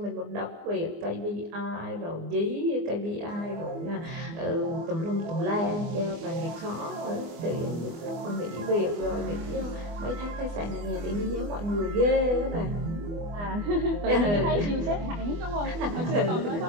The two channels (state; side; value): late; left; 24 ms